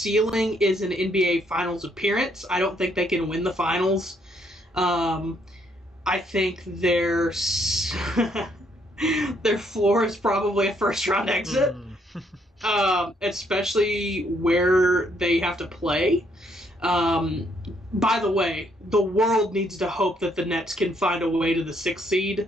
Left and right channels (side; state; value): both; normal; correlation 0.70